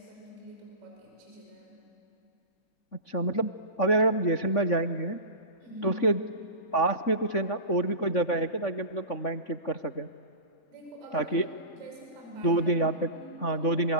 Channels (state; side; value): late; right; 3.5 ms